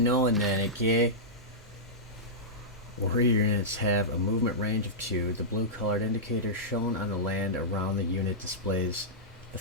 then, okay? Warrior units have a movement range of 2. The blue colored indicator shown on the land around the unit displays the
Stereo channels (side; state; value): both; normal; correlation -0.12